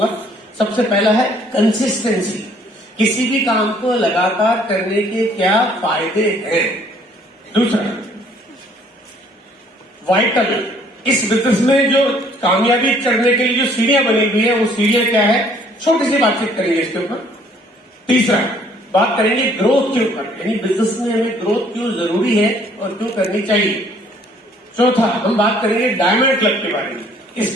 सबसे पहला है कंसिस्टेंसी, किसी भी काम को लगातार करने के क्या फायदे हैं। दूसरा, वाइटल, इस बिजनेस में जो कामयाबी चढ़ने के लिए जो सीढ़ियां बनी हुई है वो सीढ़ियां क्या है, छोटी सी बातचीत करेंगे इसके ऊपर। तीसरा, बात करेंगे ग्रोथ के ऊपर, यानी बिजनेस में हमें ग्रोथ क्यों जरूरी है और क्यों करनी चाहिए। चौथा, हम बात करेंगे डायमंड क्लब के बारे में,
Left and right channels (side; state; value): both; normal; correlation 0.60